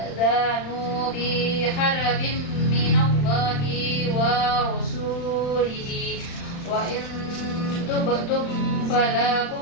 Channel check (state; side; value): late; right; 35 ms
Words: bi harbin minallahi wa rasulihi wa in tubtum